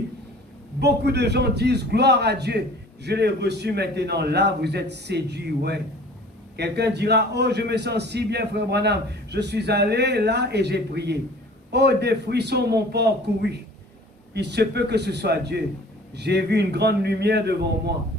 beaucoup de gens disent, gloire à Dieu, je l'ai reçu maintenant. Là, vous êtes séduits, ouais. Quelqu'un dira, oh, je me sens si bien, Frère Branham. Je suis allé là et j'ai prié. Oh, des frissons m'ont parcouru. Il se peut que ce soit Dieu. J'ai vu une grande lumière devant moi.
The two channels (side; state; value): both; normal; correlation 0.47